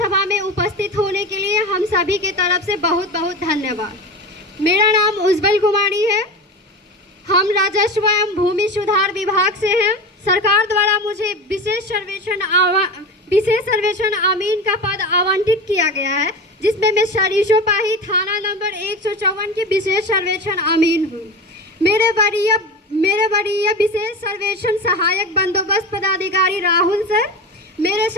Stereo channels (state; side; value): normal; both; correlation 0.26